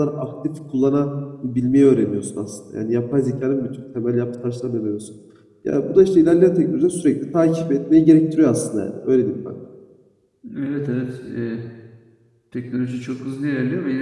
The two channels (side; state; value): both; identical; correlation 1.00